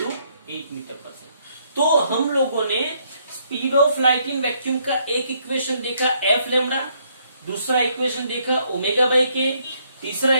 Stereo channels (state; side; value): inverted; both; correlation -0.70